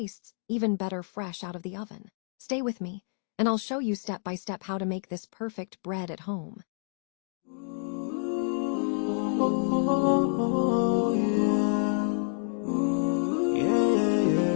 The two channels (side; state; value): right; silent; 58 dB below the other